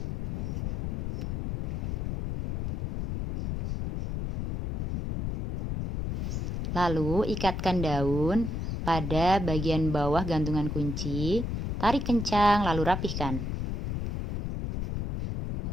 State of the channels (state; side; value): noise; left; rumble, 2 dB below the sound